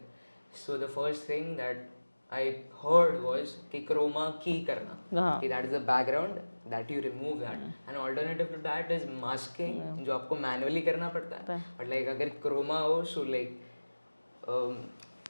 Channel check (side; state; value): both; inverted; correlation -1.00